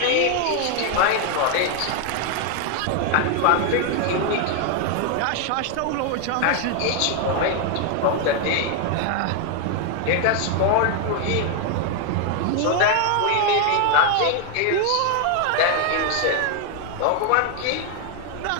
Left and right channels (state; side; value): different; both; correlation 0.00